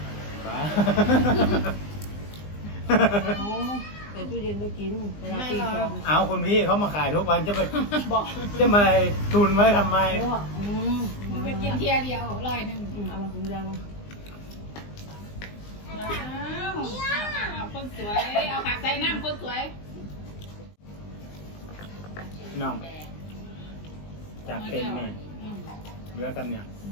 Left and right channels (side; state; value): right; late; 20 ms